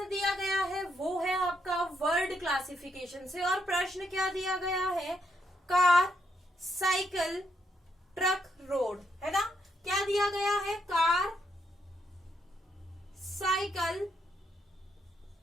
दिया गया है वो है आपका वर्ड क्लासिफिकेशन से, और प्रश्न क्या दिया गया है, कार, साइकिल, ट्रक, रोड, है ना। क्या दिया गया है, कार, साइकिल,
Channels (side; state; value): both; normal; correlation 0.77